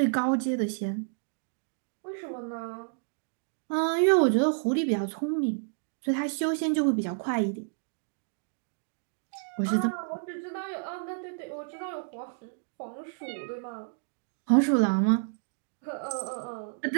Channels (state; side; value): silent; left; digital silence